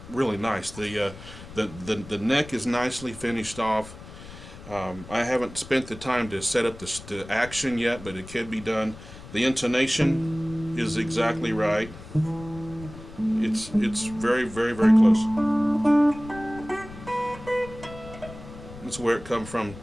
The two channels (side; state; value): left; noise; rumble, 16 dB below the sound